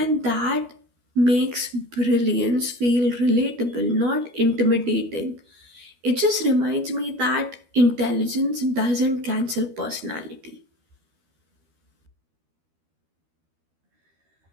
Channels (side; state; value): left; late; 12 ms